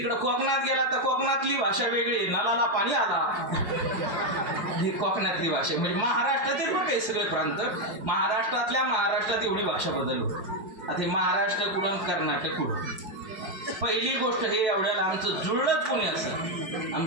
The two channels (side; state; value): left; late; 5.6 ms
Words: कोकणात गेला तर कोकणातली भाषा वेगळी, नलाला पाणी आला, ही कोकणातली भाषा. म्हणजे महाराष्ट्रातील पण काही सगळे प्रांत, महाराष्ट्रात एवढी भाषा बदलली. आता महाराष्ट्र कुठून कर्नाटक कुठून. पहिली गोष्ट हे एवढ्याला आमचं जुळलंच कोणी असं,